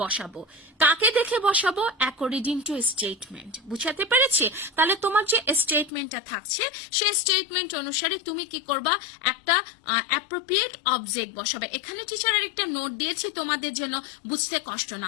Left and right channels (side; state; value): right; drops out; at 5.9 s